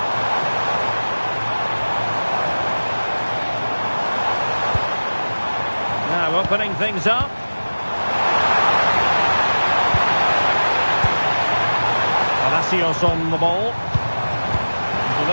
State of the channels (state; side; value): inverted; both; correlation -1.00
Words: Now opening things up. Palacios on the ball.